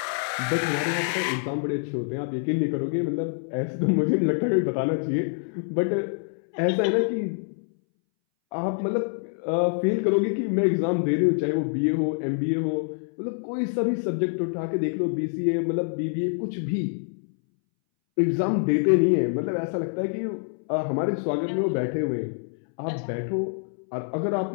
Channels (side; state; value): right; silent; 61 dB below the other